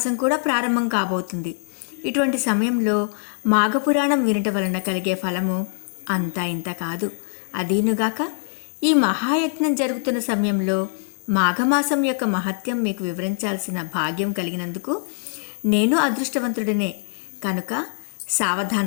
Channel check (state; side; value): silent; right; 59 dB below the other